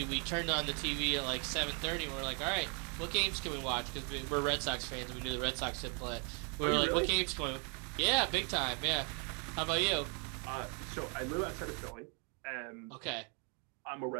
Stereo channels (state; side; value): quieter; left; 36.9 dB